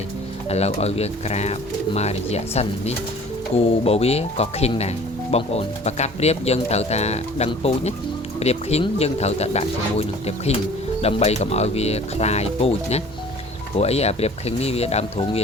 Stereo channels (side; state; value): both; normal; correlation 0.48